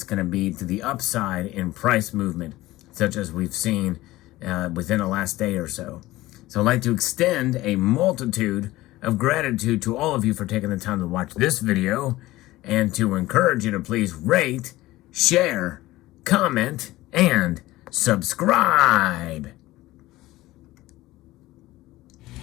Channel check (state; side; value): quieter; right; 17.6 dB